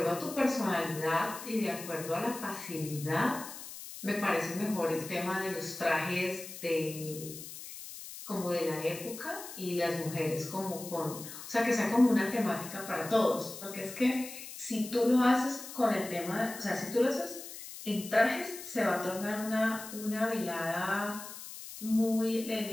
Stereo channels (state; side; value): noise; left; hiss, 12 dB below the sound